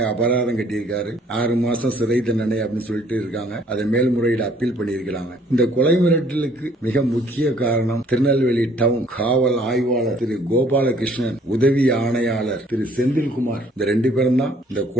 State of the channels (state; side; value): normal; both; correlation 0.60